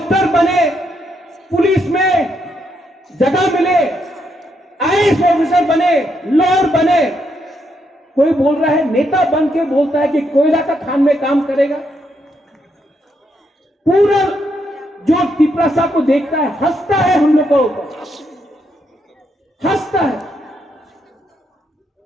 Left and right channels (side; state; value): both; normal; correlation 0.78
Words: बने, पुलिस में जगह मिले, आईएएस ऑफिसर बने, लॉयर बने। कोई बोल रहा है, नेता बन के बोलता है कि कोयला का खान में काम करेगा। पूरा जो तिपरासा को देखता है हंसता है, हम लोग को हंसता है।